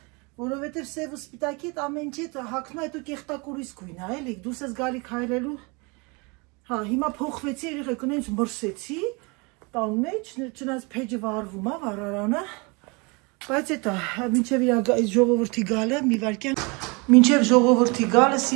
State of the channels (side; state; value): left; quieter; 29.2 dB